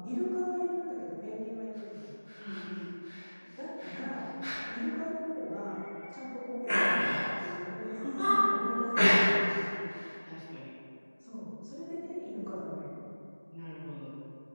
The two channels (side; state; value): both; inverted; correlation -1.00